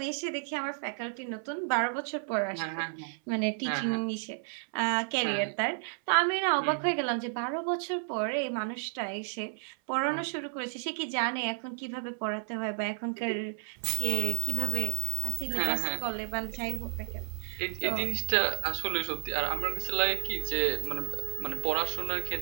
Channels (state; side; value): silent; left; 57 dB below the other